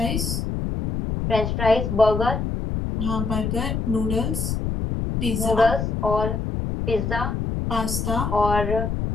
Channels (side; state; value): left; noise; rumble, 2 dB below the sound